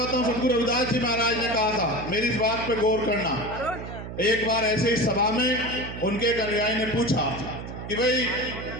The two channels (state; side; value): noise; right; hum, 9 dB below the sound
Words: हूं, सदगुरु रविदास जी महाराज ने कहा था, मेरी इस बात पे गौर करना। एक बार ऐसे ही सभा में उनके एक अनुयायी ने पूछा कि भाई